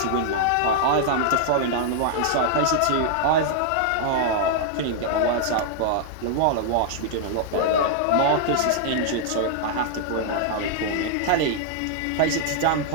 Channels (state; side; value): different; both; correlation -0.01